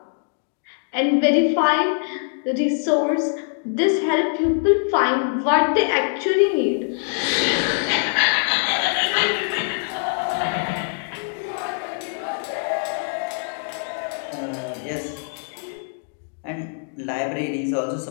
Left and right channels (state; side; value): silent; right; 63 dB below the other